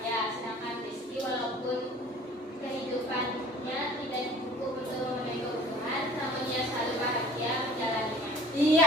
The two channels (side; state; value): both; normal; correlation 0.48